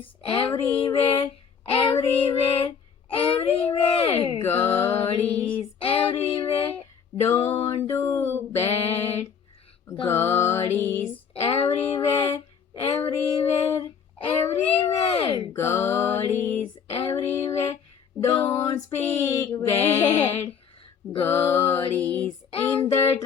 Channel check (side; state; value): right; quieter; 6.9 dB